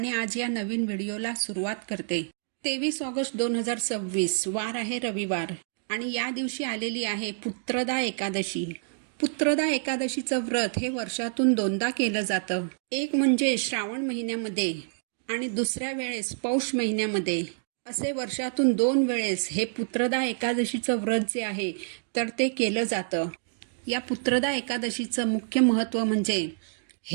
आज या नवीन व्हिडिओला सुरुवात करते. 23 ऑगस्ट 2026 वार आहे रविवार आणि या दिवशी आलेली आहे पुत्रदा एकादशी. पुत्रदा एकादशीचं व्रत हे वर्षातून दोनदा केलं जातं. एक म्हणजे श्रावण महिन्यामध्ये आणि दुसऱ्या वेळेस पौष महिन्यामध्ये. असे वर्षातून 2 वेळेस हे पुत्रदा एकादशीचं व्रत जे आहे तर ते केलं जातं. या पुत्रदा एकादशीचं मुख्य महत्त्व म्हणजे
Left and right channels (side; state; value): left; silent; digital silence